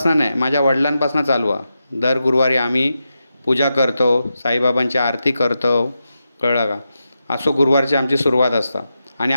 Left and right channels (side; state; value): both; inverted; correlation -0.88